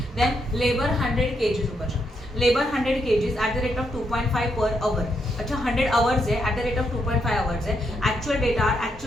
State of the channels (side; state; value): both; normal; correlation 0.79